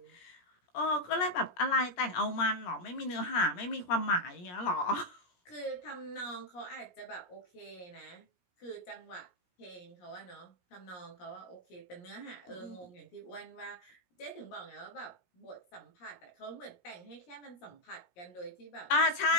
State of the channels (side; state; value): right; late; 17 ms